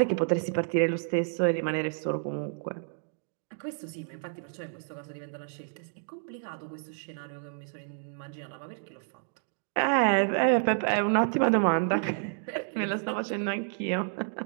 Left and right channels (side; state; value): left; silent; digital silence